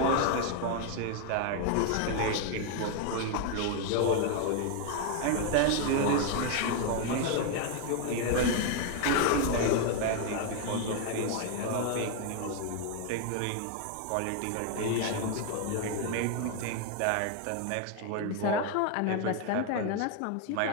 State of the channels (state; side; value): different; both; correlation 0.01